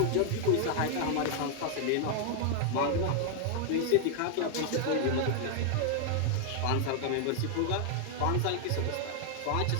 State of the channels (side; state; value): both; different; correlation 0.00